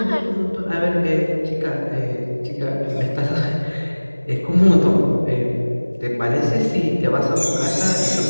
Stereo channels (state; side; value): inverted; both; correlation -1.00